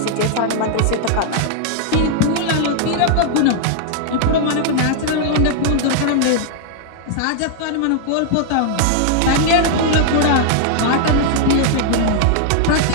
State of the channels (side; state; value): both; different; correlation 0.00